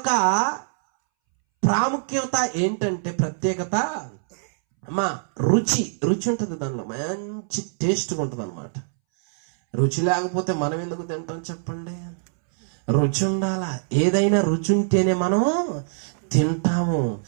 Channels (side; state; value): left; silent; 63 dB below the other